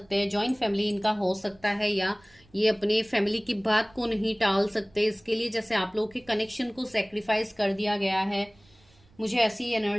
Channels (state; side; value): noise; right; rumble, 30 dB below the sound